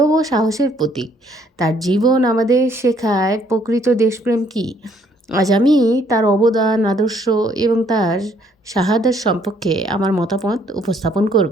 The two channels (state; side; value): normal; both; correlation 0.66